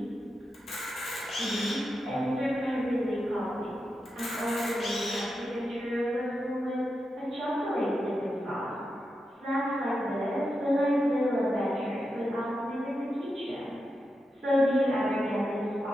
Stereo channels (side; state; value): both; normal; correlation 0.88